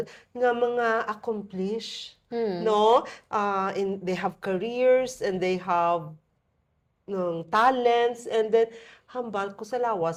nga mga accomplished, no? They have careers and they have talents, and then hambal ko sa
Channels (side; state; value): both; identical; correlation 1.00